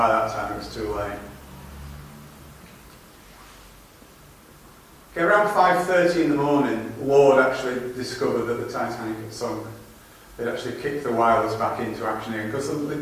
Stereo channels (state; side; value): identical; both; correlation 1.00